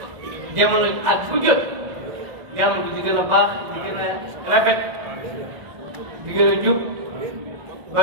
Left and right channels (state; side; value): late; left; 1.5 ms